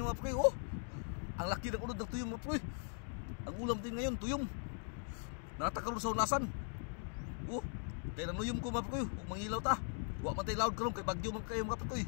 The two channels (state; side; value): silent; right; 51 dB below the other